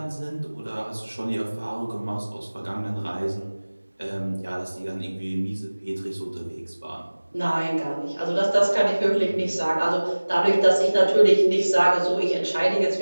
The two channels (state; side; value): inverted; both; correlation -1.00